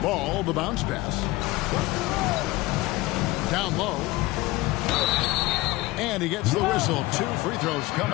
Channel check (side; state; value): right; quieter; 19.9 dB